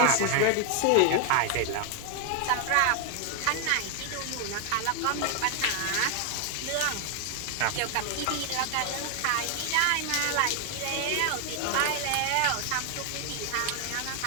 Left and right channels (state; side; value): different; both; correlation 0.00